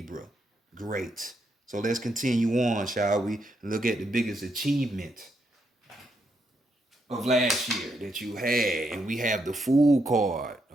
Great. So let's continue on, shall we? Look at the biggest achievement of last year that you had. And we have the Fool card.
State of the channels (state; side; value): normal; both; correlation 0.79